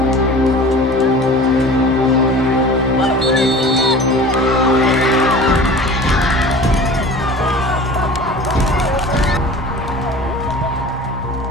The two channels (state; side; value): normal; both; correlation 0.40